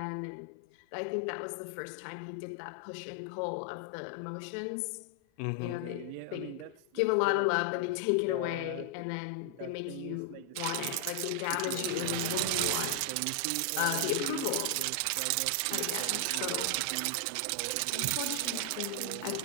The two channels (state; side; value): different; both; correlation 0.00